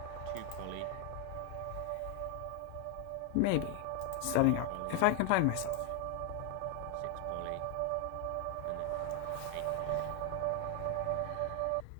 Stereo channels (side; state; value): both; different; correlation 0.00